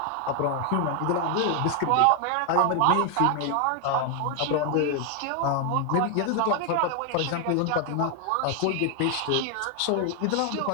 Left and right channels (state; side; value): different; both; correlation 0.00